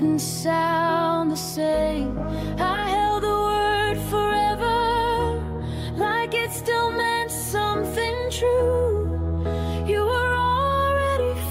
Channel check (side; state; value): both; identical; correlation 1.00